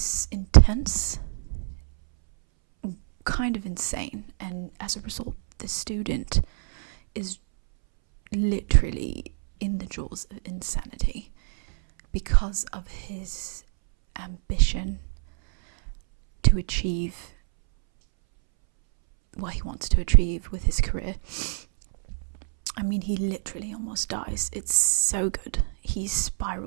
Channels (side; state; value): left; silent; 61 dB below the other